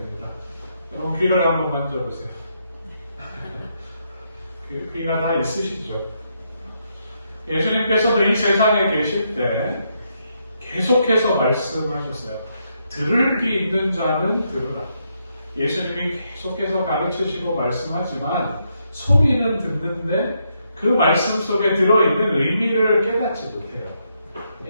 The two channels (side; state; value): both; inverted; correlation -0.79